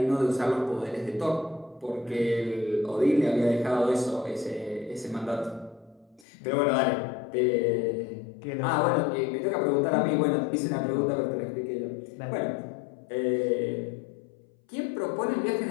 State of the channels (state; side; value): drops out; right; at 6.2 s